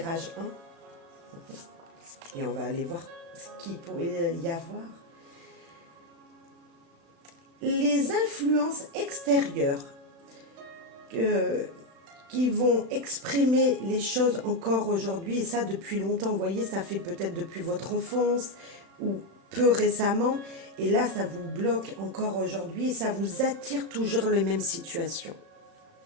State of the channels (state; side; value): late; left; 35 ms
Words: 1. Et on va aller voir ce qu'il pourrait y avoir. Les influences extérieures qui vont exprimer les choses encore aujourd'hui, et ça depuis longtemps, vous voyez, ça fait peut-être depuis votre enfance ou peu récemment, et là ça vous bloque encore aujourd'hui et ça vous attire toujours les mêmes situations.